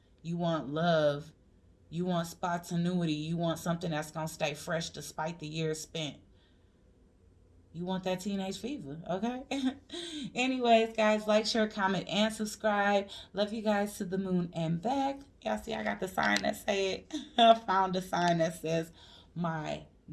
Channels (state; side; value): identical; both; correlation 1.00